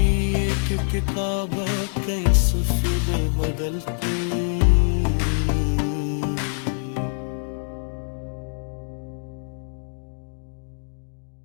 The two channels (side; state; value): right; silent; digital silence